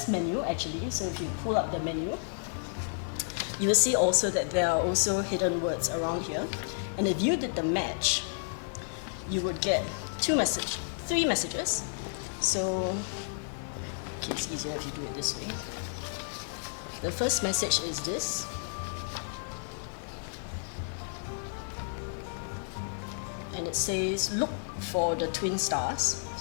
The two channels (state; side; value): silent; right; 57 dB below the other